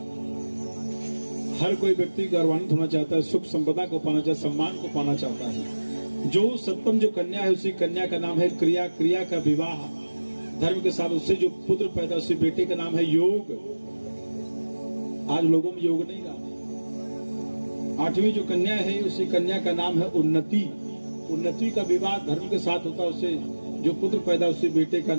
हर कोई व्यक्ति गौरवान्वित होना चाहता है, सुख संपदा को पाना चाहता है, सम्मान को पाना चाहता है। जो सप्तम जो कन्या है उसी कन्या का नाम है क्रिया। क्रिया का विवाह धर्म के साथ, उससे जो पुत्र पैदा उसी बेटे का नाम है योग। आज लोगों में योग नहीं रहा। आठवीं जो कन्या है उसी कन्या का नाम है उन्नति। उन्नति का विवाह धर्म के साथ होता है, उससे जो पुत्र पैदा उसी बेटे का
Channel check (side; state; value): both; inverted; correlation -1.00